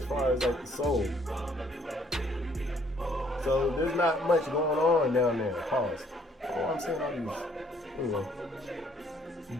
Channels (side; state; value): both; normal; correlation 0.63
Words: far as like the sole. So there's not much going on down there. Pause. Oh, I'm saying all these. Anyway.